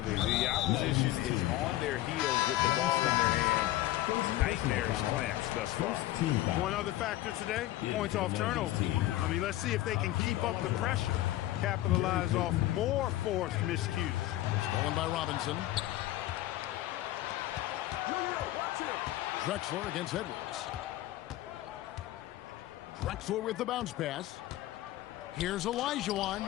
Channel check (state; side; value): quieter; right; 15.2 dB